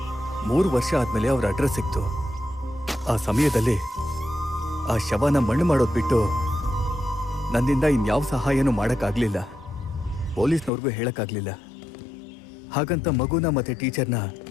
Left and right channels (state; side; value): drops out; right; at 10.7 s